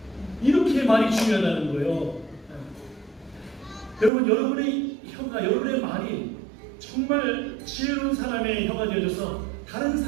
이렇게 말이 중요하다는 거예요. 여러분, 여러분의 혀가, 여러분의 말이 정말 지혜로운 사람의 혀가 되어져서 다른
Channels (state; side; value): drops out; left; at 4.1 s